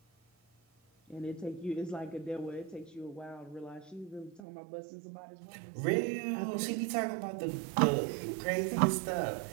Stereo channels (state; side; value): drops out; left; at 4.4 s